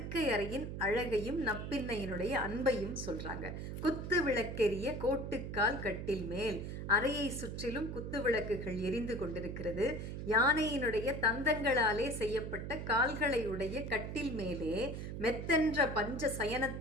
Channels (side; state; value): right; noise; hum, 6 dB below the sound